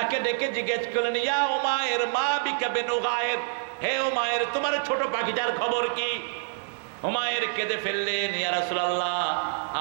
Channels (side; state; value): left; silent; 60 dB below the other